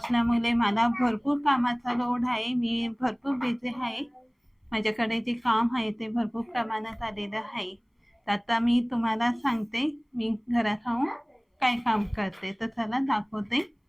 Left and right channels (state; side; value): identical; both; correlation 1.00